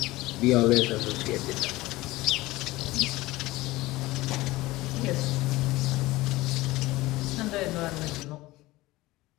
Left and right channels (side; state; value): right; quieter; 19.2 dB